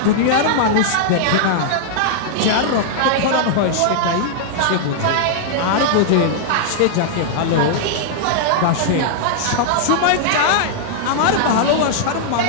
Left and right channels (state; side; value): different; both; correlation -0.01